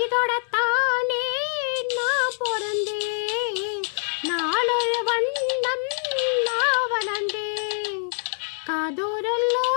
நான் பிறந்தேன், நாளொரு வண்ணம் நான் வளர்ந்தேன்.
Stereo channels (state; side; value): silent; right; 62 dB below the other